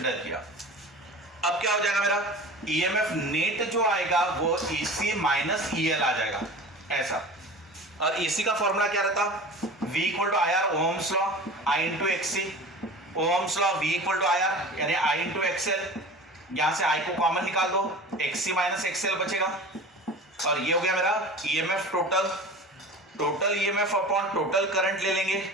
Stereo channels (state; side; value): normal; both; correlation 0.36